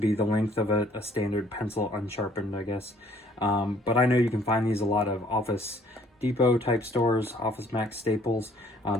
the length of a standard pencil unsharpened, I guess. But I know you can find these a lot of Office Depot type stores, Office Max, Staples.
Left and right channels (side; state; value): both; normal; correlation 0.60